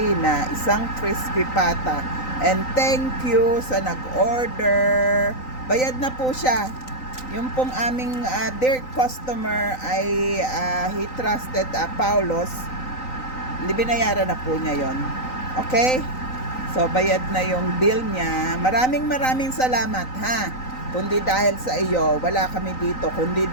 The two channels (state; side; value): late; right; 3.9 ms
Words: na isang crispy pata. And thank you sa nag-order. Bayad na po siya. Yung pong aming dear customer ay he trusted Paulos. Binayaran na po niya yon. Okay? So, bayad na yung bill niya. Maraming salamat, ha? Kundi dahil sa iyo, wala kami dito. Kundi